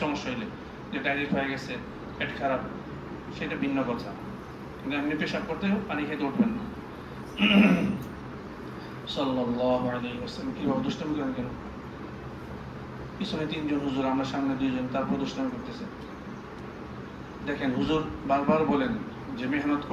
সমস্যা হইলে, যে ডাইরেক্ট হয়ে গেছে, পেট খারাপ, সেটা ভিন্ন কথা, কিন্তু এমনি পেশাব করতে পানি খেতে উঠবেন না। সাল্লাল্লাহু আলাইহি ওয়াসাল্লাম কিভাবে দুষ্টামি করেন কেন? পিছনে 3 জন হুজুর, আমরা সামনে 2 জন, তারপর দুষ্টামি করতেছে। দেখেন হুজুর বারবার বলেন যে মেহনত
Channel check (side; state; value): both; identical; correlation 1.00